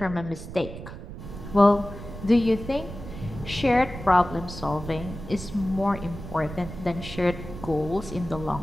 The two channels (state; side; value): noise; right; rumble, 11 dB below the sound